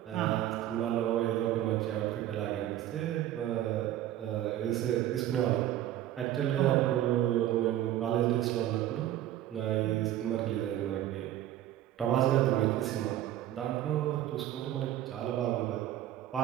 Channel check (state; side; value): quieter; left; 12.7 dB